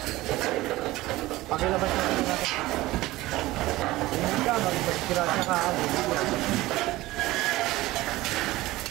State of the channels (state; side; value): quieter; left; 18.2 dB